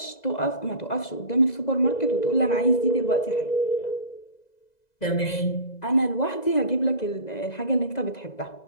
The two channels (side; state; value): right; late; 2.0 ms